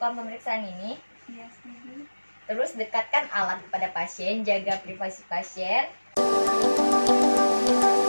pemeriksaan ini? Iya, setuju. Terus dekatkan alat kepada pasien, jaga privasi pasien.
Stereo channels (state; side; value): inverted; both; correlation -1.00